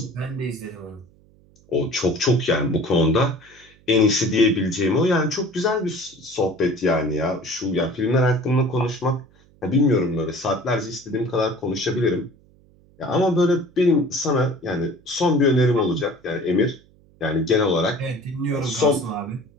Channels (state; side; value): noise; right; hum, 29 dB below the sound